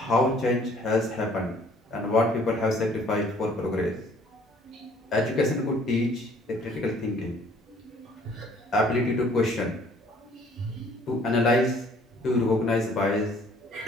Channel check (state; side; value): normal; both; correlation 0.58